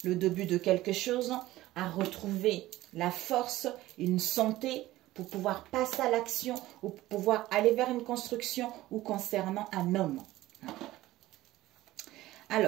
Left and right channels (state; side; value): quieter; left; 16.4 dB